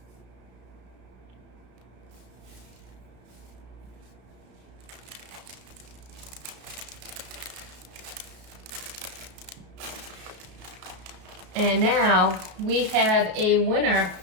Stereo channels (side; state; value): left; late; 33 ms